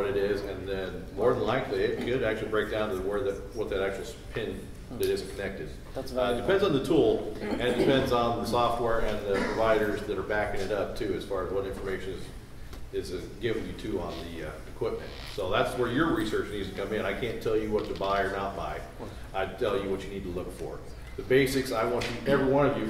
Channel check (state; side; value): identical; both; correlation 1.00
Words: it is, and then more than likely it could actually break down to what that actual pin that isn't connected. That's depends on the tool, and it depends on the software and the providers that are backing it up too, as far as what information is given you to on the equipment. So that's where your research needs to come in. I can't tell you what to buy or not buy. I tell you what you need to look for. The basics, I want you, every one of you, if